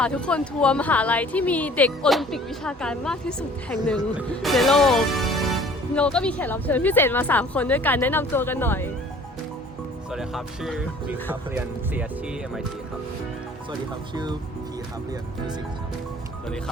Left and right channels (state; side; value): normal; both; correlation 0.51